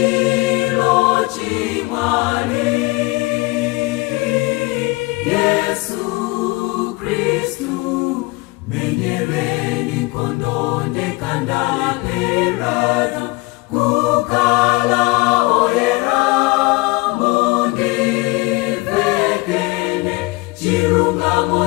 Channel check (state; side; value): quieter; right; 24.2 dB